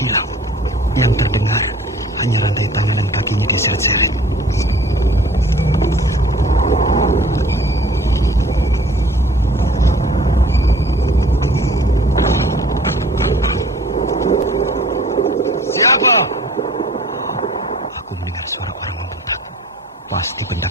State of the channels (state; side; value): normal; both; correlation 0.51